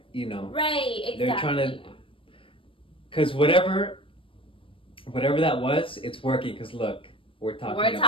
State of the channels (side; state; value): right; late; 0.25 ms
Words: you know. Right, exactly. They're trying to. Because whatever that was, it's working. Because look, we're talking